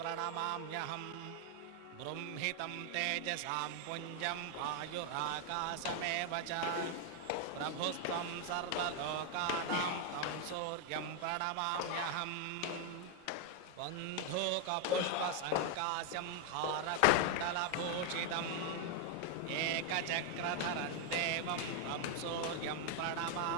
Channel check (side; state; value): both; different; correlation 0.00